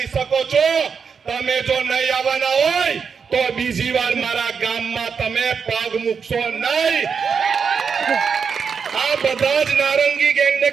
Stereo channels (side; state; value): left; quieter; 6.1 dB